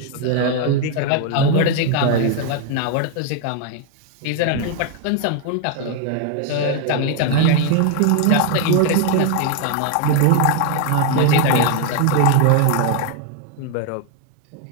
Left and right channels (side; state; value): both; different; correlation 0.00